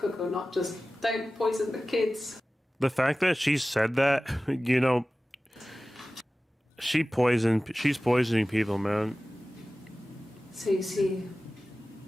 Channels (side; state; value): both; normal; correlation 0.96